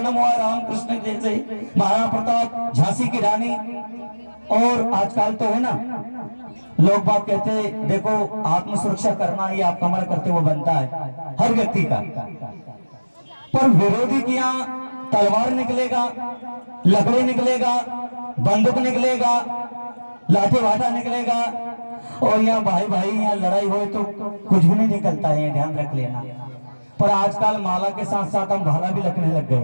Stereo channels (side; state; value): both; inverted; correlation -1.00